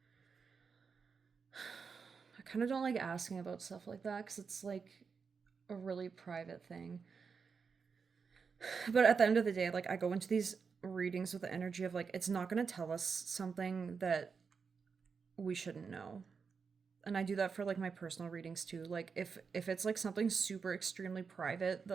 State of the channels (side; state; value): left; quieter; 5.6 dB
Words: I kind of don't like asking about stuff like that because it's like a really private thing. But at the end of the day, like I go into these readings with the energy of like it's not going to tell us something that we shouldn't know. And I do that for like my personal readings too. Like if it's like something super extremely private